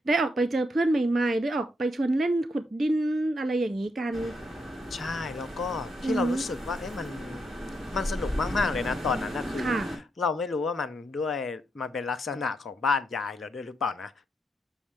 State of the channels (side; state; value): both; normal; correlation 0.80